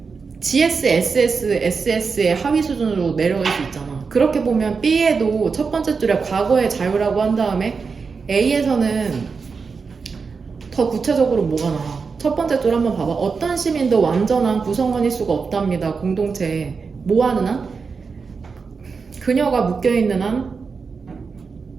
GS, SS, SS의 하위 수준으로 내려갈 수 있잖아. 그렇게 보면 B에도 첫 번째 줄에 과거의 자유라고 한 다음에 A에서는 더 구체적으로 뭐가 나와? 첫 번째 줄 한번 봐봐. 어떤 시민도 완전한 구성원일 수가 없답니다. 공동체에. 뭐 하는 한? 그녀가 묶여있는 한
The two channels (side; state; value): left; quieter; 5.1 dB